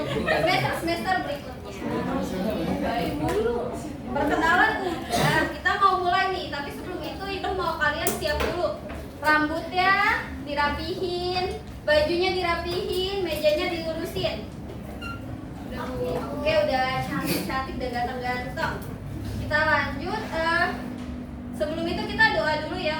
semester berikutnya. Baik, perkenalan udah. Kita mau mulai nih, tapi sebelum itu ibu mau kalian siap dulu. Rambutnya dirapihin, bajunya dirapihin, mejanya dilurusin. Oke, udah cantik-cantik dan ganteng-ganteng. Kita lanjut. Sebelum itu kita doa dulu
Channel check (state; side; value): identical; both; correlation 1.00